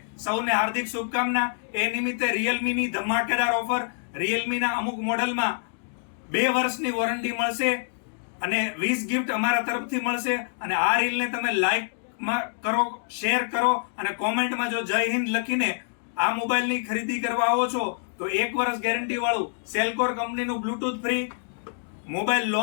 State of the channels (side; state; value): right; silent; digital silence